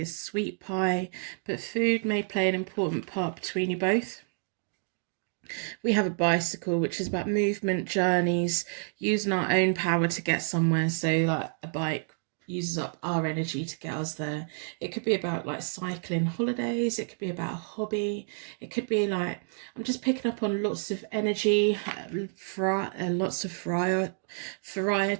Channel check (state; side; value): silent; left; 58 dB below the other